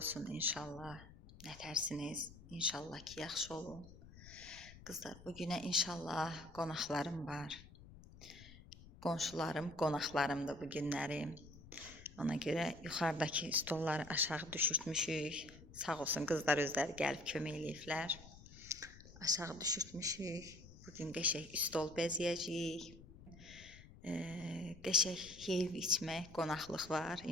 inşallah. Nətərsiniz? İnşallah ki, yaxşı olun. Qızlar, bu günə inşallah qonaqlarım var. Qonşularım, qonaqlarımdır bu günlərim. Ona görə yuxarıdakı stolları aşağı düşürtmüşük. Sağ olsun qızlar özləri gəlib kömək eləyiblər. Aşağı düşürtmüşük. Bugün qəşəng stol bəzəyəcəyik. Qəşəng yeyib içmək, qonaqlıq var.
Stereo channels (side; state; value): left; noise; rumble, 18 dB below the sound